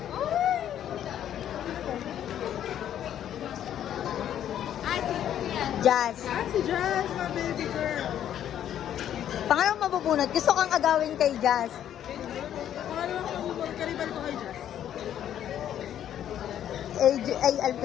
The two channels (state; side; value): quieter; right; 10.5 dB